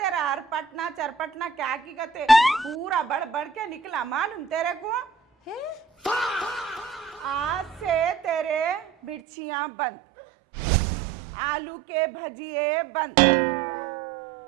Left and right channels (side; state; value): left; drops out; at 9.2 s